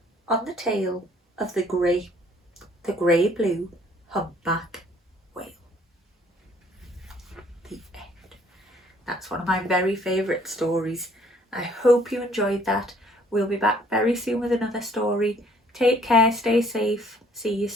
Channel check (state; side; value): normal; both; correlation 0.60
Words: on the tail of the grey-blue humpback whale. The end. That's one of my very favourite stories. I hope you enjoyed that. We'll be back very soon with another story. Take care, stay safe. See you